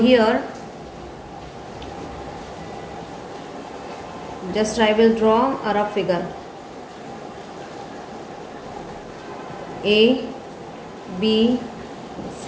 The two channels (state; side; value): identical; both; correlation 1.00